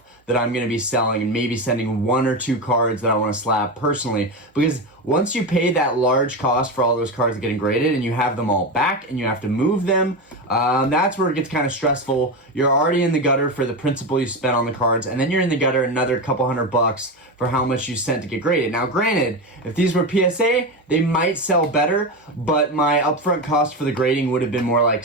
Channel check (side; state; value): both; normal; correlation 0.17